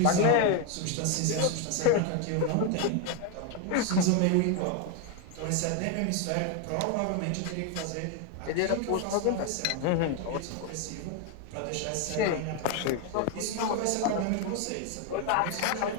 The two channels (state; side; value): different; both; correlation 0.01